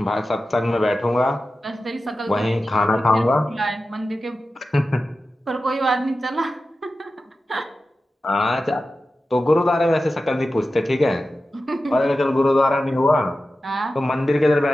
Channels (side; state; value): both; normal; correlation 0.93